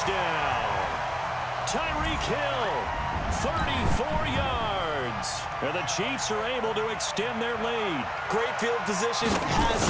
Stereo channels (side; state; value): both; identical; correlation 1.00